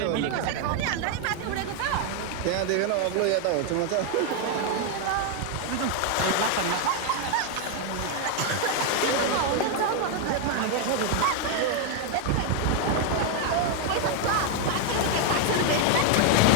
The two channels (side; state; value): both; different; correlation 0.01